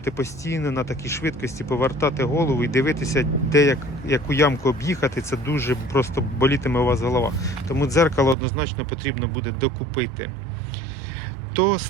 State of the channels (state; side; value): drops out; left; at 8.3 s